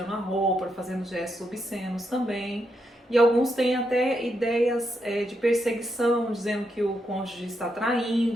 a roupa, fazendo gestos obscenos também. E alguns têm até ideias de perseguição, dizendo que o cônjuge está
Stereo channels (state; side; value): normal; both; correlation 0.82